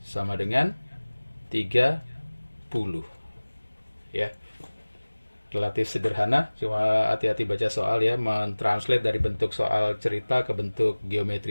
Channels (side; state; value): both; inverted; correlation -1.00